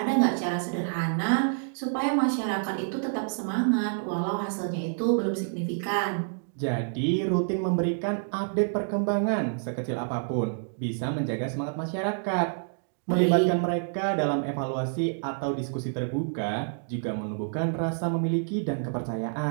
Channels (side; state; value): left; silent; digital silence